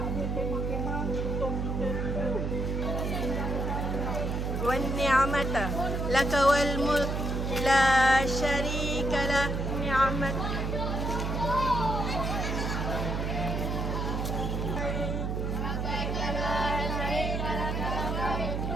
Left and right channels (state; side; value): noise; right; hum, 1 dB below the sound